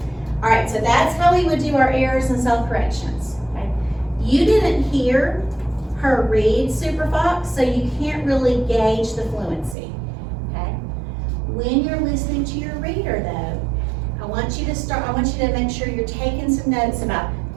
All right, so that's how we would do our errors and self-corrections, okay? You didn't hear her read Super Fox, so you can't really gauge the fluency, okay? When you're listening to your reader though, I want you to make sure you're taking some notes about,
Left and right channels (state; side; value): drops out; left; at 9.8 s